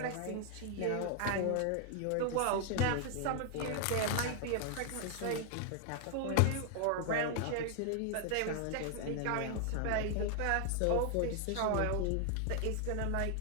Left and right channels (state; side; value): different; both; correlation 0.00